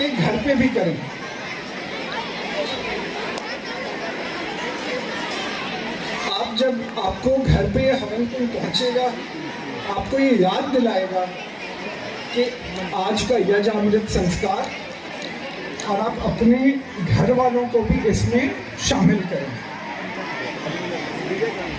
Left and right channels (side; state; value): both; identical; correlation 1.00